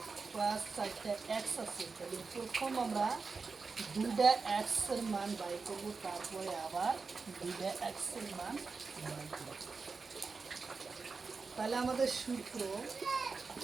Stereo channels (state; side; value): quieter; left; 4.6 dB